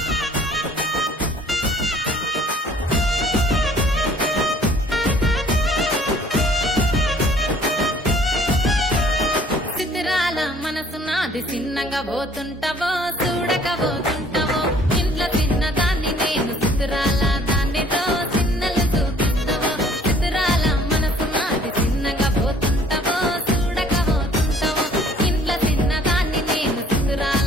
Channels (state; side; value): normal; both; correlation 0.56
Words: చిత్రాల మనసు నాది చిన్నగా పోతుంటావో చూడకపోతుంటావో ఇంట్లో తిన్నదాన్ని నేను చిత్రాల దానితో చిన్నలు చూపిస్తావో చిత్రాల మనసు నాది చిన్నగా పోతుంటావో చూడకపోతుంటావో ఇంట్లో తిన్నదాన్ని నేను